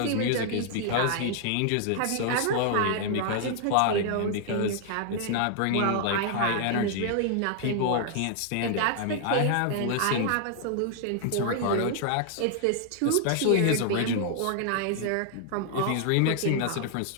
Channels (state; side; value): different; both; correlation 0.00